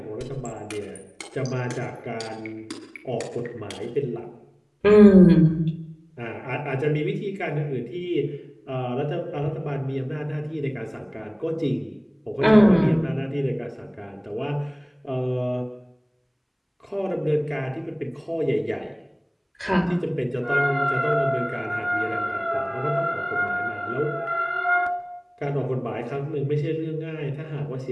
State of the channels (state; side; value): identical; both; correlation 1.00